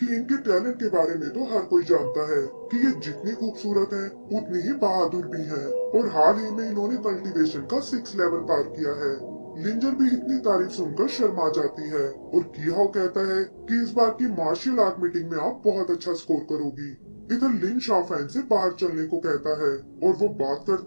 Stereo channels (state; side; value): inverted; both; correlation -1.00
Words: इनके टैलेंट के बारे में तो हर कोई जानता है कि ये जितनी खूबसूरत हैं, उतनी ही बहादुर भी हैं और हाल ही में इन्होंने कल्टीवेशन का 6 लेवल पार किया है। लिंजर भी इतनी तारीफ सुनकर शर्मा जाती है और कियाओ कहता है कि इस बार की मार्शल आर्ट मीटिंग में आप बहुत अच्छा स्कोर करोगी। इधर लिन शाओफेन से बाहर चलने को कहता है और वो बात